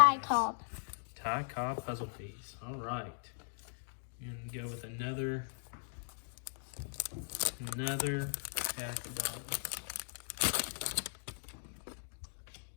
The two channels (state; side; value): silent; right; digital silence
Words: Donruss. Cobb. Ty Cobb puzzle piece. All right. And go with another pack of dollars.